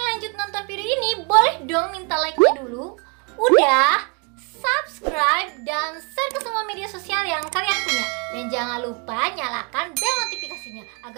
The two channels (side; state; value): left; quieter; 34.2 dB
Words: lanjut nonton video ini, boleh dong minta like-nya dulu. Udah, subscribe dan share ke semua media sosial yang kalian punya. Dan jangan lupa nyalakan bel notifikasinya